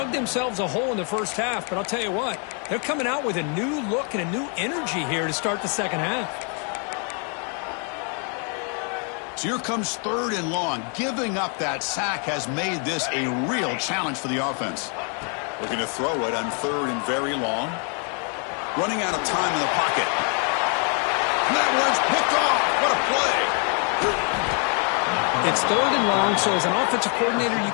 themselves a hole in the first half, but I'll tell you what, they're coming out with a new look and a new energy here to start the second half. So here comes 3rd and long. Giving up that sack has made this a real challenge for the offense. Looking to throw it on 3rd and very long. Running out of time in the pocket. And that one's picked off. What a play. It's 3rd and long, so as an offensive coordinator, you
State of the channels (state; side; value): quieter; right; 39.6 dB